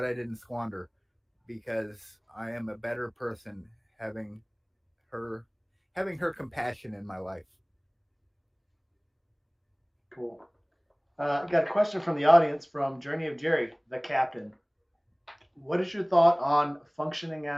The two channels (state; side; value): identical; both; correlation 1.00